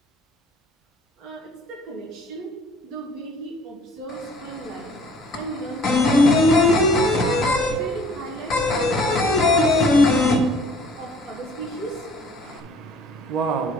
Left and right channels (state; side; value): normal; both; correlation 0.54